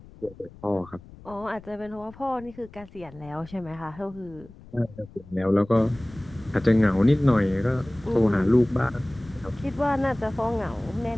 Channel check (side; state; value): left; noise; rumble, 20 dB below the sound